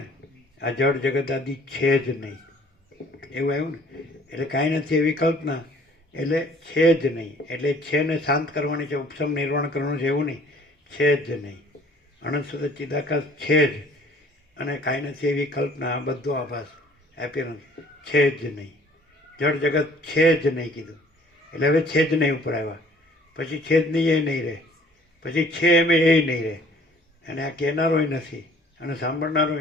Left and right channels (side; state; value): both; normal; correlation 0.55